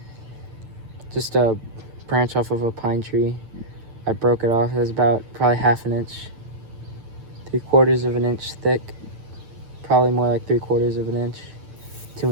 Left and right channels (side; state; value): left; late; 9.0 ms